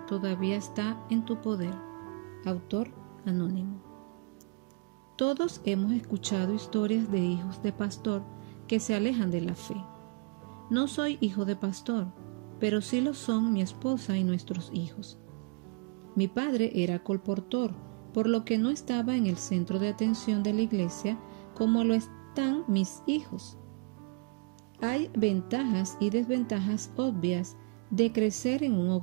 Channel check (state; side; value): quieter; left; 34.6 dB